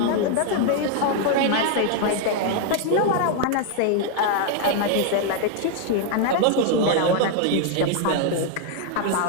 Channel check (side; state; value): both; different; correlation 0.00